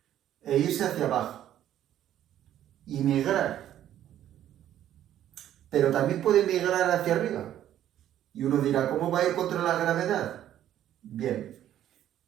e irse hacia abajo y migrar. Pero también puede migrar hacia arriba. Y uno dirá, ¿cómo va a ir contra la gravedad? Bien,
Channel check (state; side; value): quieter; left; 11.6 dB